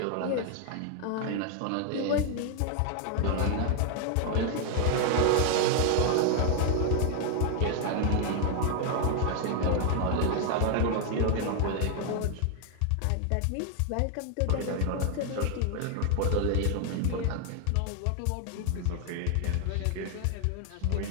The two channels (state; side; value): different; both; correlation 0.00